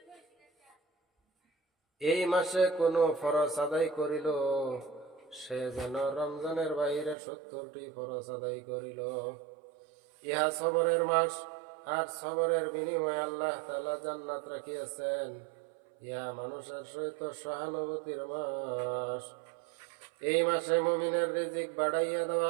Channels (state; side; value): drops out; left; at 7.2 s